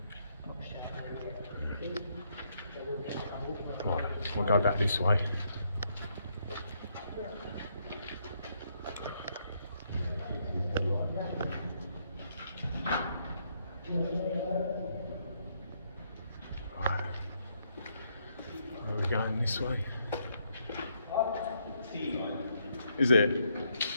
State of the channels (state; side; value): inverted; both; correlation -0.74